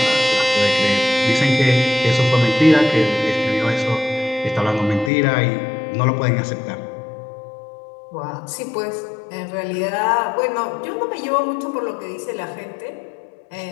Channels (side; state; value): right; drops out; at 5.1 s